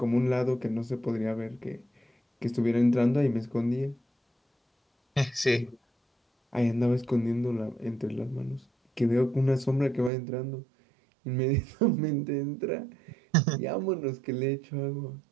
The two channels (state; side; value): drops out; left; at 10.1 s